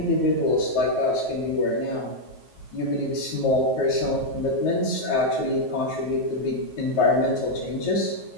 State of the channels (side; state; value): right; late; 9.3 ms